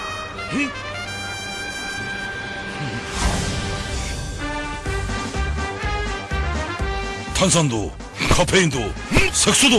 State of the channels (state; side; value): identical; both; correlation 1.00